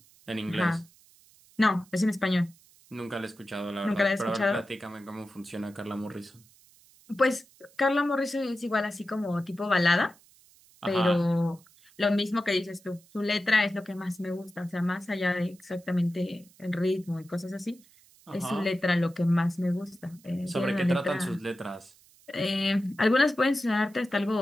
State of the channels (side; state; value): right; noise; hiss, 28 dB below the sound